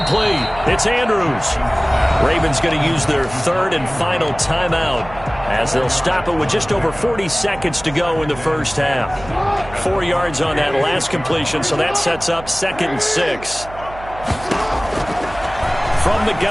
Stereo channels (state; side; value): noise; right; hum, 16 dB below the sound